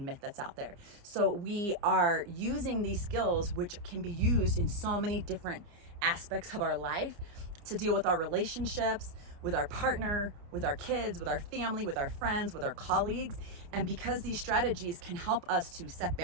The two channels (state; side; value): late; left; 29 ms